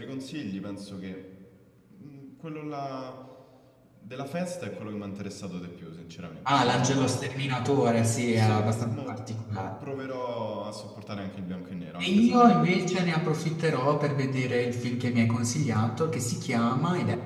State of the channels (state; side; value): identical; both; correlation 1.00